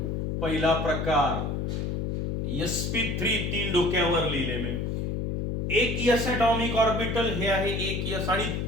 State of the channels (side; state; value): left; noise; hum, 1 dB below the sound